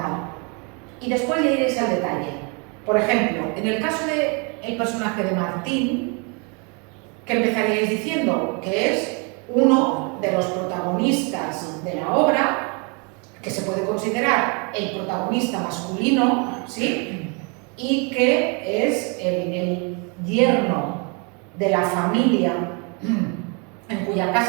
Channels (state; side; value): quieter; left; 33.9 dB